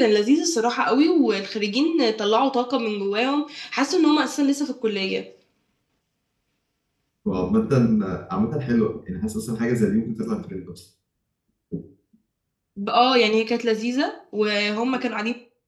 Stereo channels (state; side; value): identical; both; correlation 1.00